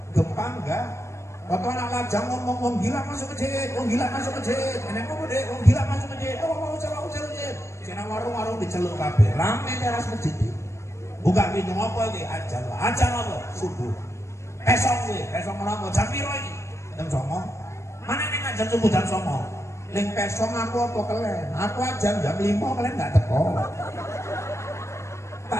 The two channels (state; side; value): late; right; 0.13 ms